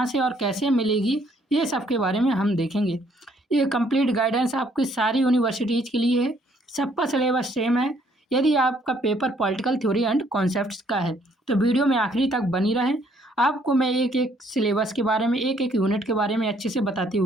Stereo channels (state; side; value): normal; both; correlation 0.66